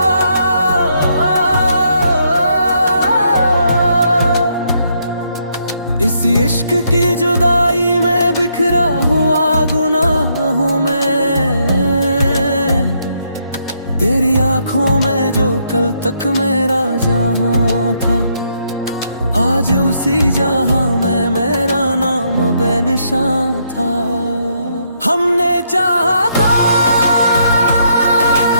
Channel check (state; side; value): inverted; both; correlation -0.74